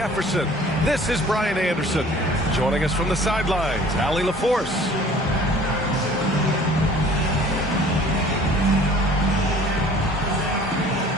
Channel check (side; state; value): both; normal; correlation 0.50